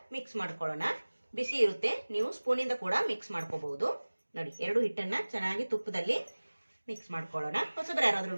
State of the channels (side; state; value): both; inverted; correlation -1.00